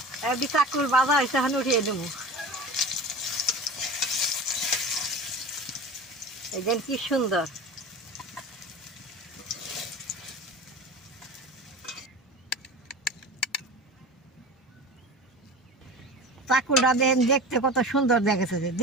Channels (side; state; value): both; normal; correlation 0.33